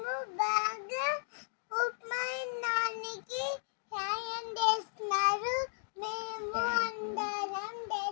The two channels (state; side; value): silent; right; digital silence